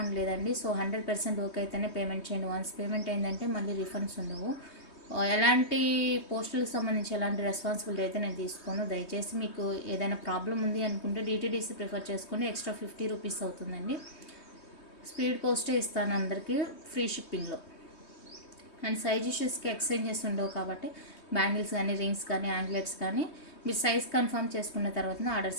లేదండి. సో 100% ఓకే అయితేనే పేమెంట్ చేయండి. వన్స్ పేమెంట్ అయిందంటే మళ్ళీ రిఫండ్స్ ఉండవు. ఎలాంటి పోస్టులకు సంబంధించి ఎలాంటి రెస్పాన్సిబిలిటీ అయితే నేను తీసుకోను. దయచేసి మీకు ఏదైనా ప్రాబ్లం ఉంది అనుకుంటే డిటీడీసీ ప్రిఫర్ చేసుకోండి. ఎక్స్ట్రా 50 రూపీస్ అవుతుందండి. స్పీడ్ పోస్టే ఇస్తాను అందరికీ ఫ్రీ షిప్పింగ్లో. అండ్ సైజ్ ఇష్యూస్కి ఎక్స్చేంజెస్ ఉండవు కాబట్టి బ్యాంగిల్స్ కానీ, రింగ్స్ కానీ, యాంగ్లెట్స్ కానీ మీరు సైజ్ కన్ఫర్మ్ చేసుకున్న తర్వాత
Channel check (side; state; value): right; late; 3.2 ms